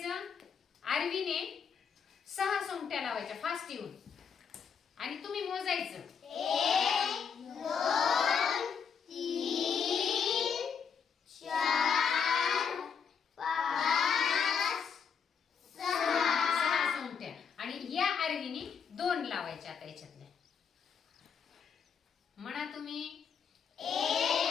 आरवीने 6 सोंगट्या लावायच्या फास्ट येऊन आणि तुम्ही मोजायचं. 1 2 3 4 5 6 सोंगट्या. आणि या आरवीने 2 लावायच्या. आता याच्यातल्या म्हणा तुम्ही.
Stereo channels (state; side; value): quieter; right; 6.7 dB